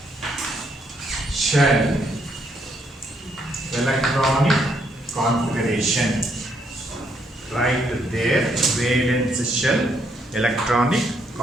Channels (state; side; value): normal; both; correlation 0.73